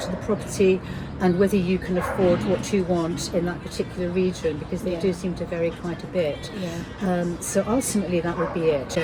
the property and whether you can afford what you want in that particular region, because they do seem to vary quite a bit. So ultimately, that would be it.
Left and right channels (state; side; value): identical; both; correlation 1.00